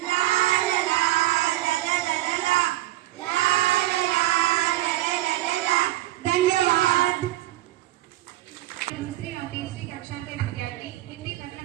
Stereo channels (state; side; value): quieter; left; 16.0 dB